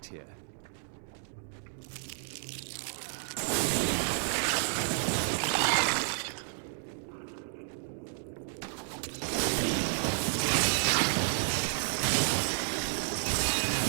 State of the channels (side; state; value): left; silent; 57 dB below the other